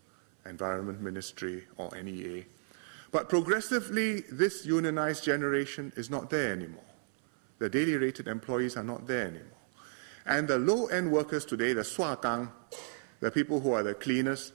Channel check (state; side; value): silent; left; 56 dB below the other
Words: Environment Ministry, or NEA. But progressively, this unionized generation is not there anymore. The daily rated employees are not there anymore. And the low-end workers today, the swakang, the people who are the cleaners,